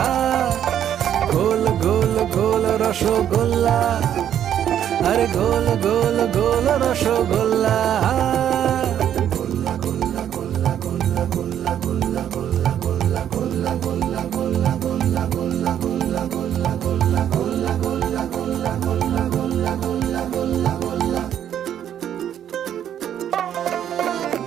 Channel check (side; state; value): left; quieter; 10.1 dB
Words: গোল গোল গোল রসগোল্লা, আরে গোল গোল গোল রসগোল্লা।